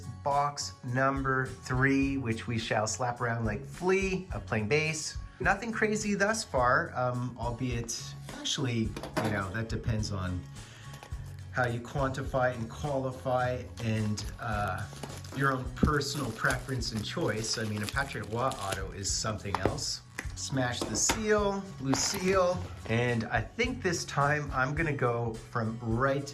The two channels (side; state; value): both; identical; correlation 1.00